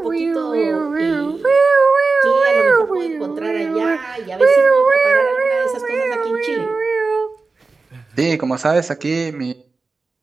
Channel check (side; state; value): left; quieter; 4.0 dB